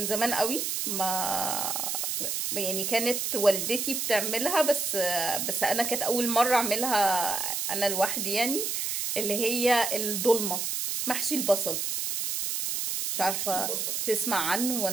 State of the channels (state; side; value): noise; right; hiss, 1 dB below the sound